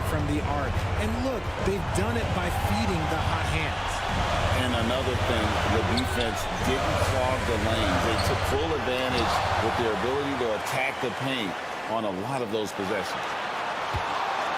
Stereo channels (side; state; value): both; identical; correlation 1.00